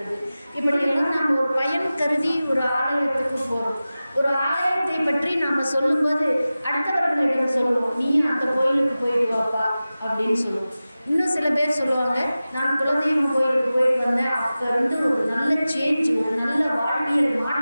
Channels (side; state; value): both; inverted; correlation -0.96